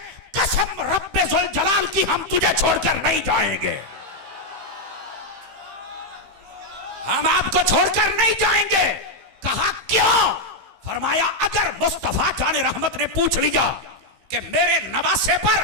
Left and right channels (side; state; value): left; late; 15 ms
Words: कसम रब्बे जुल जलाल की हम तुझे छोड़कर नहीं जाएंगे, हम आपको छोड़कर नहीं जाएंगे। कहा क्यों? फरमाया अगर मुस्तफा जाने रहमत ने पूछ लिया कि मेरे नवासे पर